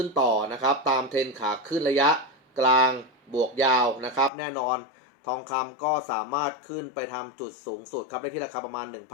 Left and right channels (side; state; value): right; drops out; at 4.3 s